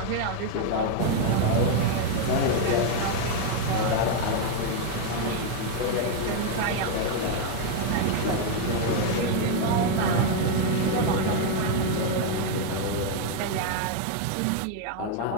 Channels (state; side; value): different; both; correlation 0.01